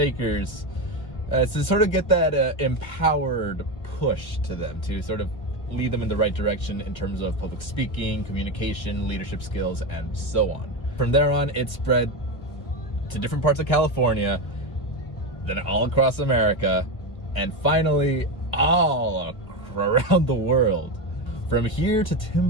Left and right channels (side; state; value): right; late; 1.6 ms